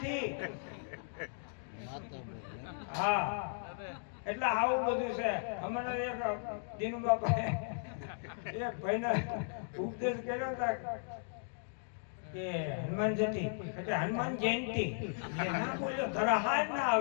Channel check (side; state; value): right; silent; digital silence